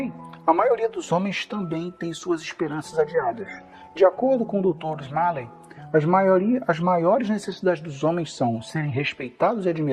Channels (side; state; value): both; identical; correlation 1.00